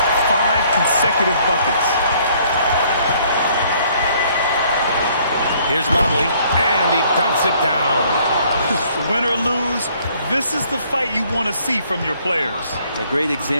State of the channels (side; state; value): both; inverted; correlation -0.62